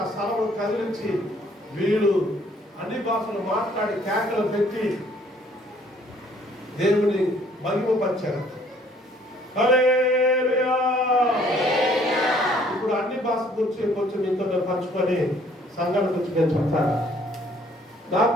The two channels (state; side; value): normal; both; correlation 0.61